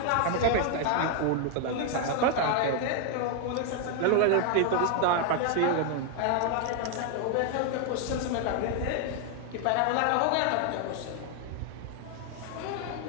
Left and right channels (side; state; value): both; different; correlation 0.00